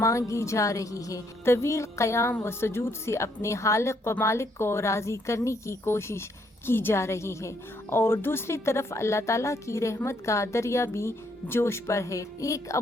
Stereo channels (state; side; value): normal; both; correlation 0.71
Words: جا رہی ہے۔ طویل قیام و سجود سے اپنے خالق و مالک کو راضی کرنے کی کوشش کی جا رہی ہے، اور دوسری طرف اللہ تعالیٰ کی رحمت کا دریا بھی جوش پر ہے۔ ایک